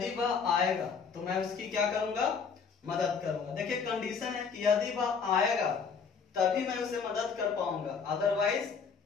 वह आएगा तो मैं उसकी क्या करूंगा, मदद करूंगा। देखिए कंडीशन है कि यदि वह आएगा तभी मैं उसे मदद कर पाऊंगा, अदरवाइज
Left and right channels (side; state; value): right; quieter; 5.9 dB